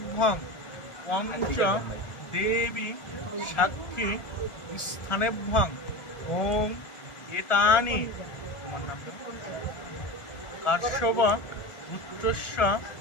পঞ্চ দেবী সাক্ষী স্থানেভ্যাং ওম এতানি তোমার নাম কাশ্যপ পুত্রস্য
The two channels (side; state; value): right; late; 1.4 ms